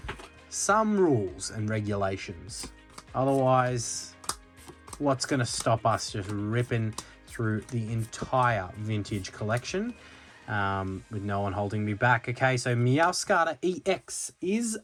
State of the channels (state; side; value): identical; both; correlation 1.00